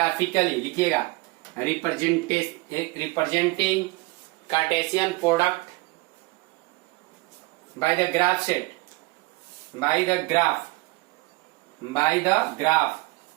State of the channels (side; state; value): left; quieter; 23.3 dB